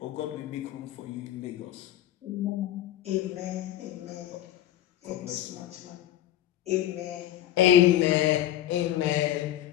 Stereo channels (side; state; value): right; quieter; 12.7 dB